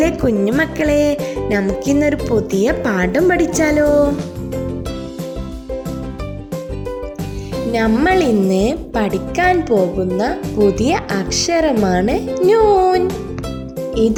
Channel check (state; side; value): identical; both; correlation 1.00